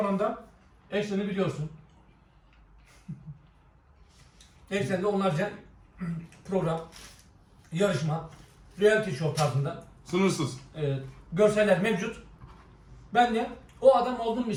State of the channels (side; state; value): both; identical; correlation 1.00